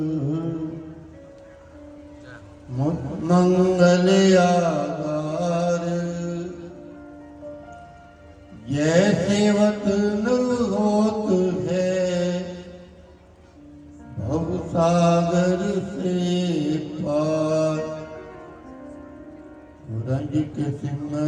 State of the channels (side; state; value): both; identical; correlation 1.00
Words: मंगल आगार। जैसे वतन होत है भव सागर से पार। रंजित